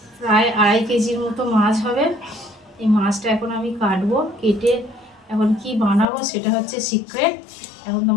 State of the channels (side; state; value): right; drops out; at 6.1 s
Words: প্রায় 2.5 কেজির মতো মাছ হবে। এই মাছটা এখন আমি কাটবো, কেটে এখন কি বানাবো সেটা হচ্ছে সিক্রেট। এখন